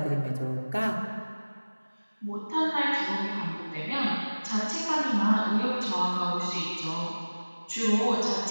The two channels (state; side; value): inverted; both; correlation -1.00